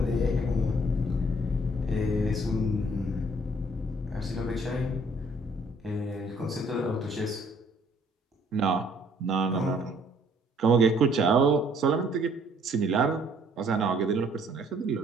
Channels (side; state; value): both; normal; correlation 0.62